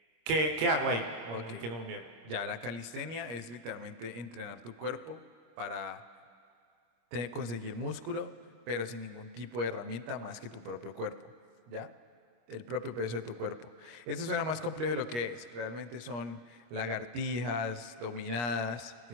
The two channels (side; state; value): left; late; 25 ms